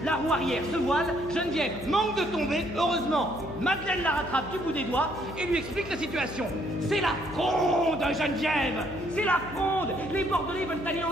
la roue arrière se voile, Geneviève manque de tomber, heureusement. Madeleine la rattrape du bout des doigts et lui explique la situation. C'est la fronde, Geneviève! C'est la fronde! Les Bordelais veulent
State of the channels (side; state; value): left; noise; hum, 14 dB below the sound